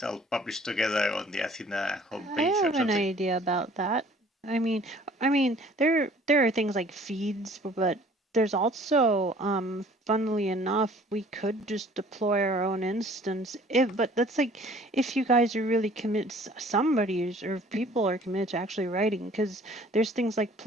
all published together on the Athena homepage I or have an something? idea about that. I mean, there are things like feeds, but there's also, funnily enough, we could just deploy our own instance. But that's like if you guys are really committed, somebody is, or people are committed to actually writing, because there's things like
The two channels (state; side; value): normal; both; correlation 0.53